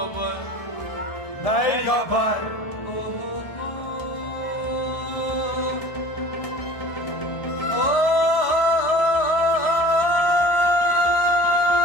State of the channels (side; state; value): right; late; 1.5 ms